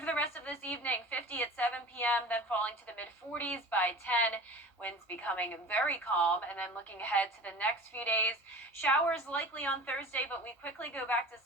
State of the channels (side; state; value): both; normal; correlation 0.38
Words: the rest of this evening, 50 at 7 p.m., then falling to the mid-40s by 10. Winds becoming very calm, and then looking ahead to the next few days, showers likely on Thursday, but we quickly go back to